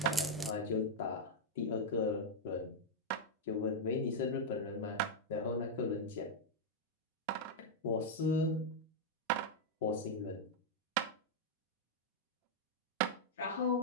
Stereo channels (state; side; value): normal; both; correlation -0.02